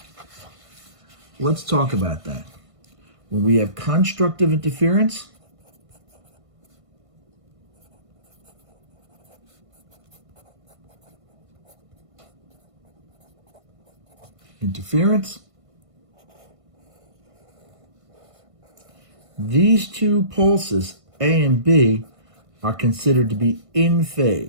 let's talk about that. When we have constructive interference, these two pulses, A and B, are considered to be in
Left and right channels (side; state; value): left; late; 1.5 ms